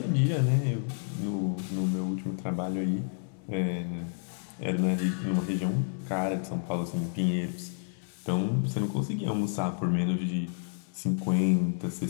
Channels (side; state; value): right; silent; 58 dB below the other